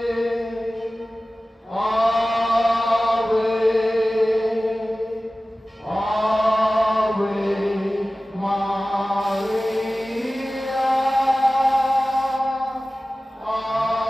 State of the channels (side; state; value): both; normal; correlation 0.97